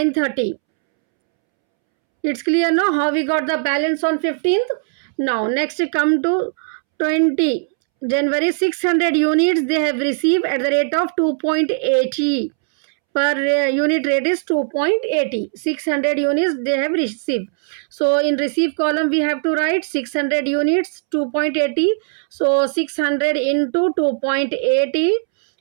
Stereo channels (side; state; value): left; silent; 67 dB below the other